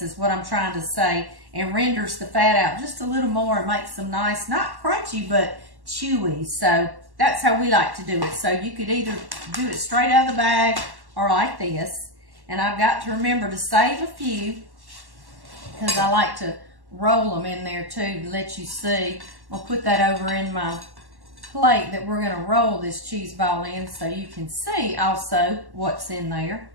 is what I'm trying to say, and renders the fat out just a little more and makes them nice, not crunchy, but chewy. So that's how we like to do it. So you could either do it straight out of the bag or like this. And I've got to remember to save a few because I like to roll them in there too to let you see. I'll put that over in my plate that we're going to roll this cheese ball in so you can see also what's in there.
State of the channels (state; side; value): late; left; 1.1 ms